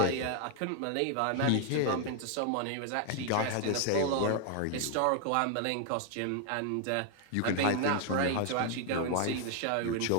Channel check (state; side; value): different; both; correlation 0.00